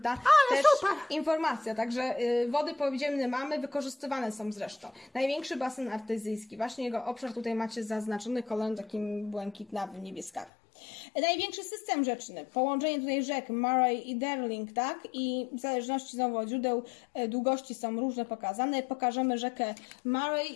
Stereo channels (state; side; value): drops out; right; at 10.5 s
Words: też informacja. Także wody podziemne mamy, wykorzystywane są zresztą. Największy basen artezyjski, właśnie jego obszar tutaj macie zaznaczony kolorem takim błękitnawym, niebieskawym. Największy system rzeczny, połączenie tutaj rzek Murray i Darling, tak? I w zależności znowu od źródeł długości są różne pokazane. Pokażemy rzekę